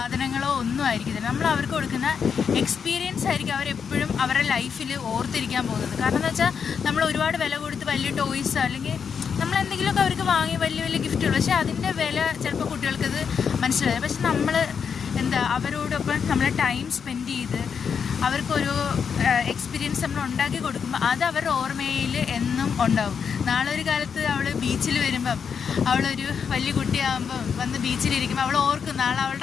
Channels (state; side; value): quieter; right; 6.7 dB